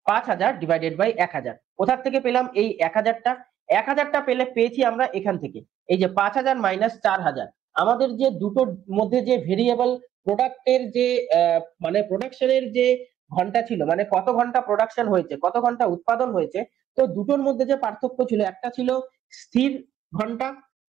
5,000 ডিভাইডেড বাই 1,000। কোথা থেকে পেলাম এই 1,000টা? 1,000টা পেয়েছি আমরা এখান থেকে। এই যে 5,000 মাইনাস 4,000, আমাদের যে দুটোর মধ্যে যে ভেরিয়েবল প্রোডাক্টের যে মানে প্রোডাকশনের যে ঘন্টা ছিল, মানে কত ঘন্টা প্রোডাকশন হয়েছে, কত ঘন্টা উৎপাদন হয়েছে, তো দুটোর মধ্যে যে পার্থক্য ছিল, একটা ছিল স্থির ঘন্টা,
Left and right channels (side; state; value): left; quieter; 11.2 dB